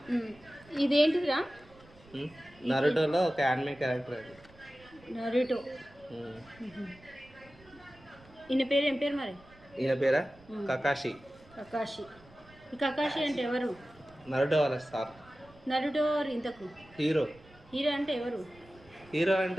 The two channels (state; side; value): noise; right; rumble, 25 dB below the sound